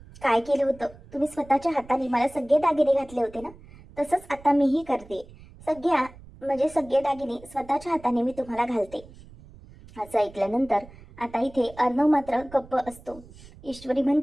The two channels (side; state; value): right; noise; rumble, 21 dB below the sound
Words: काय केलं होतं? तुम्ही स्वतःच्या हाताने मला सगळे दागिने घातले होते ना, तसंच आता मीही करते. सगळ्या म्हणजे सगळे दागिने स्वतःच्या हाताने मी तुम्हाला घालते. असं ऐकल्यानंतर आता इथे अर्णव मात्र गप्प असतो. ईश्वरी